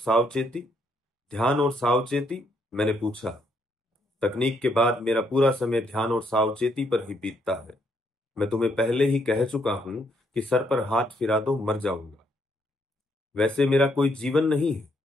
ध्यान और सावचेती, मैंने पूछा। तकनीक के बाद मेरा पूरा समय ध्यान और सावचेती पर ही बीतता है। मैं तुम्हें पहले ही कह चुका हूं कि सर पर हाथ फिरा दो मर जाऊंगा। वैसे मेरा कोई जीवन नहीं है।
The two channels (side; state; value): both; normal; correlation 0.73